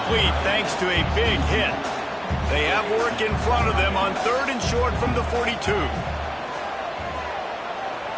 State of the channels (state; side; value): identical; both; correlation 1.00